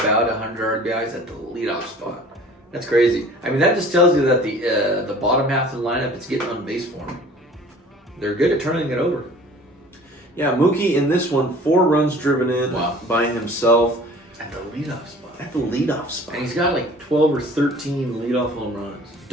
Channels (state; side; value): normal; both; correlation 0.47